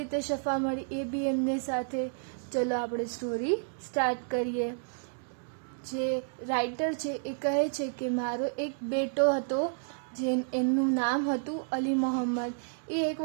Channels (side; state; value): left; silent; digital silence